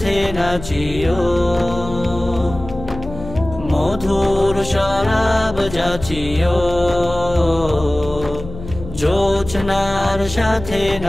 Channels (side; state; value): left; noise; hum, 12 dB below the sound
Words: নাচিও। মধুর শরাব যাচিও, জোছনার সাথে